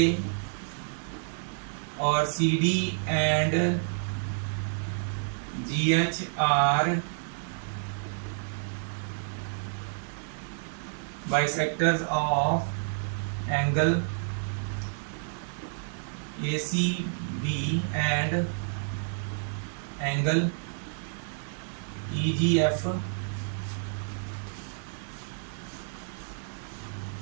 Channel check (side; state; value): left; silent; digital silence